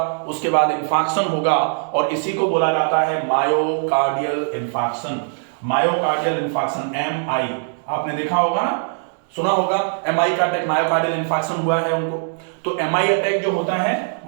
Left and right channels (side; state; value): left; silent; 65 dB below the other